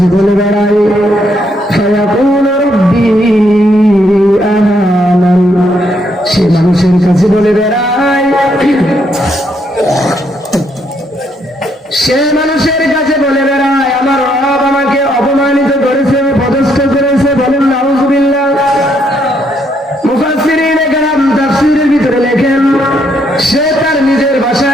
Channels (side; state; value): both; normal; correlation 0.73